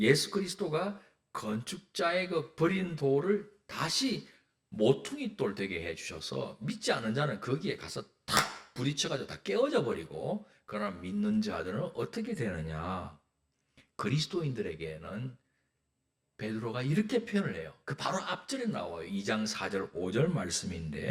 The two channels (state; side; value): identical; both; correlation 1.00